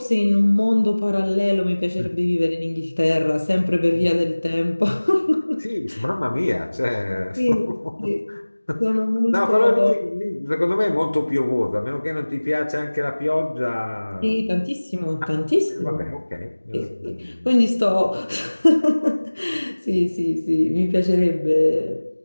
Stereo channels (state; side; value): inverted; both; correlation -1.00